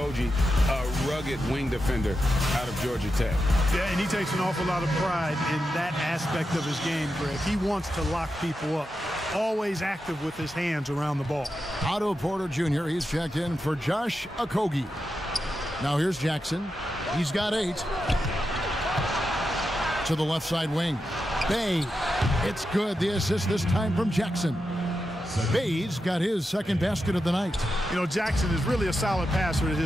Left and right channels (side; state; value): both; normal; correlation 0.88